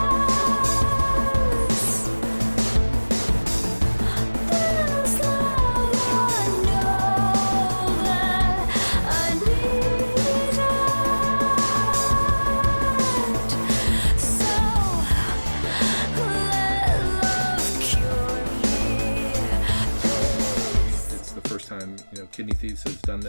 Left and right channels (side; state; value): both; inverted; correlation -1.00